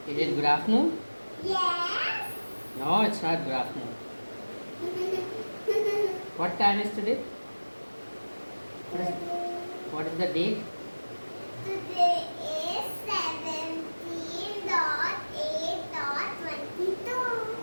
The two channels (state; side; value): inverted; both; correlation -1.00